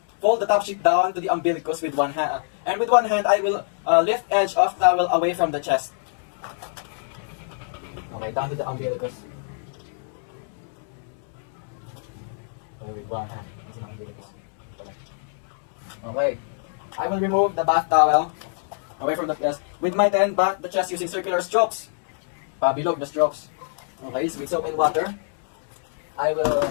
fold the top sheet down to the umbilicus with one hand. And with one hand, I will lift edge of towel away from the chest. Okay, down to the umbilicus. Okay, with one hand. Okay, I will remove the bath towel away from the chest. With my hand, bath the chest using circular strokes. Pabilog the strokes. Okay, so with soap and water, I will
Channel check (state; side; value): silent; right; digital silence